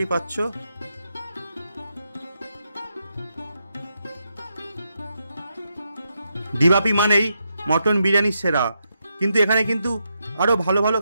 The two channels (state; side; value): inverted; both; correlation -0.83